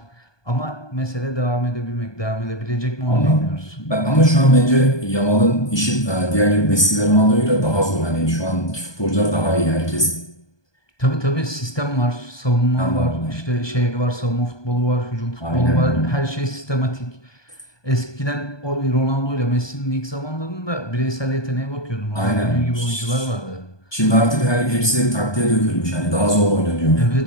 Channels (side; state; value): right; late; 1.2 ms